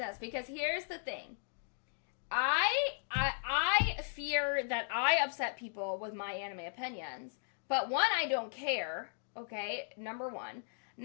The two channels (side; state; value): right; silent; digital silence